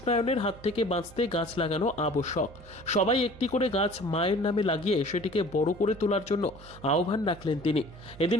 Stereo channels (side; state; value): right; noise; hum, 20 dB below the sound